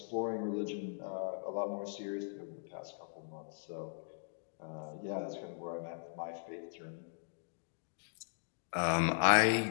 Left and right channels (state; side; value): silent; right; digital silence